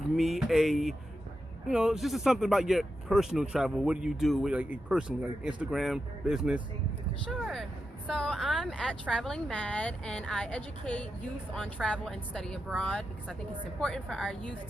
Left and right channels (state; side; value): normal; both; correlation 0.88